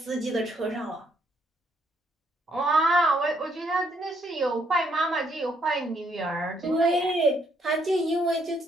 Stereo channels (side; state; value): both; normal; correlation 0.71